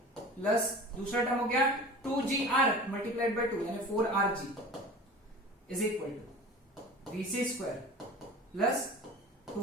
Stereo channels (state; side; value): normal; both; correlation 0.38